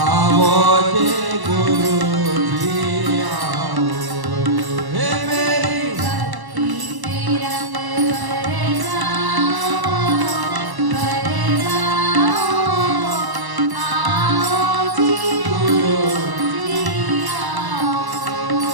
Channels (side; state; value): left; late; 1.0 ms